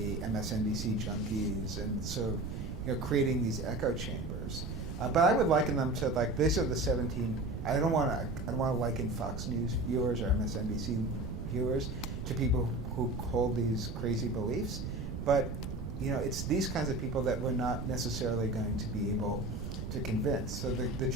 MSNBC junkies, and so, you know, creating these echo chambers. But I would liken them to, like, these are the 17. I don't want to liken Fox News viewers or MSNBC viewers to people who hold these crazy beliefs, but, you know, it's these kinds of people that we're not necessarily going to be able to convince. So the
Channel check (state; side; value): noise; right; rumble, 5 dB below the sound